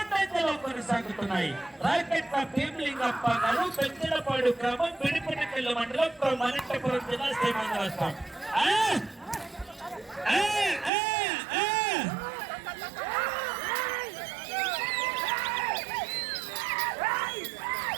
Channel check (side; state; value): left; drops out; at 10.9 s